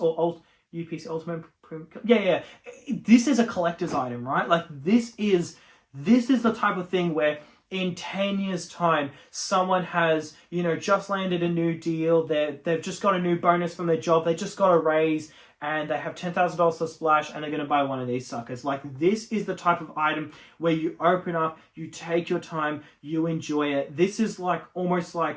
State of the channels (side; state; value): both; identical; correlation 1.00